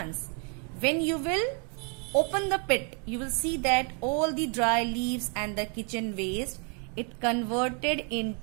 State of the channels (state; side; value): quieter; left; 38.4 dB